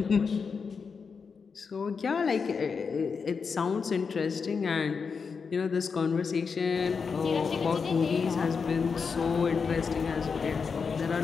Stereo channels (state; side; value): quieter; right; 5.5 dB